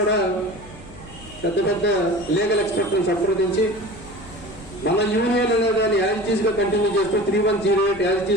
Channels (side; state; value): left; noise; hum, 19 dB below the sound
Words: పెద్ద లీగల్ ఎక్స్పర్ట్ని సంప్రదించి మన యూనియన్ అనేదాన్ని యాజిటీస్గా కంటిన్యూ చేస్తూ 3108